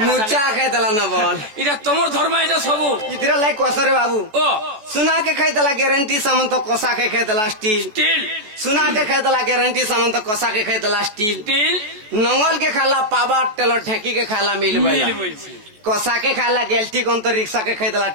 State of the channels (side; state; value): left; late; 14 ms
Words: मुचा खाय दला न बोल इटा तमोर धर्म इटा सबु इधर लाइक कोसरे बाबू ओ सुना के खाय दला गारंटी सामान तो कोसा के खाय दला स्टील स्टील सुना के खाय दला गारंटी सामान तो कोसा के खाय दला स्टील स्टील नंगल के खाला पावा टेलो ठेकी के खाला मिल बैल कोसा के खाला गेल्टी कौन तो रिक्शा के खरीदला